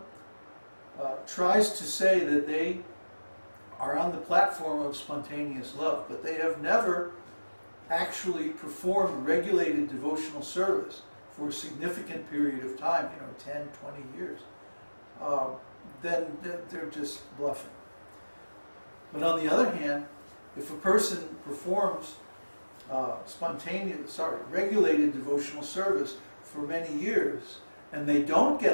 tries to say that they are on the platform of spontaneous love, but they have never actually performed regulated devotional service for a significant period of time, 10, 20 years, then they're just bluffing. But on the other hand, if a person performs regulated devotional service for many years, and they don't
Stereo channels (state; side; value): inverted; both; correlation -1.00